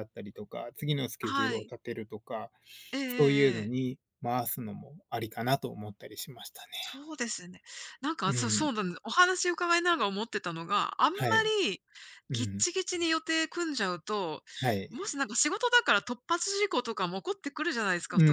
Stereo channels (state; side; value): identical; both; correlation 1.00